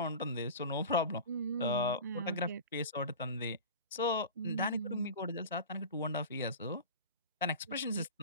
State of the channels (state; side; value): inverted; both; correlation -0.34